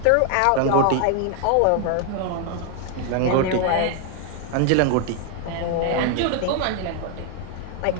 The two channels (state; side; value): different; both; correlation 0.00